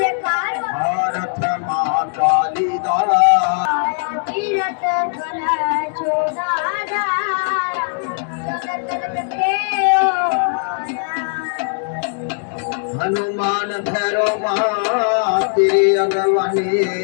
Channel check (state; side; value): silent; right; digital silence